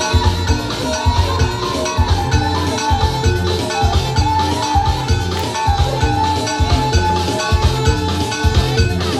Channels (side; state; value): both; identical; correlation 1.00